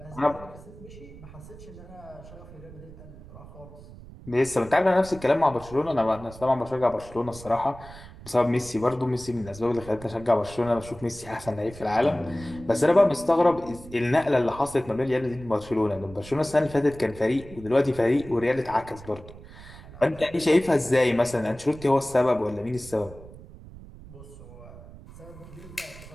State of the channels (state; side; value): noise; right; rumble, 17 dB below the sound